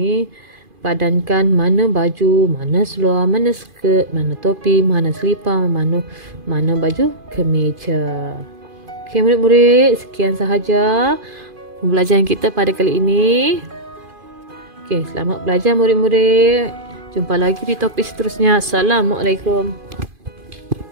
Padankan mana baju, mana seluar, mana skirt, mana topi, mana selipar, mana baju kemeja. Okey murid-murid, sekian sahaja pembelajaran kita pada kali ini. Okey, selamat belajar murid-murid. Jumpa lagi di topik seterusnya. Assalamualaikum.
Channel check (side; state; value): left; late; 2.5 ms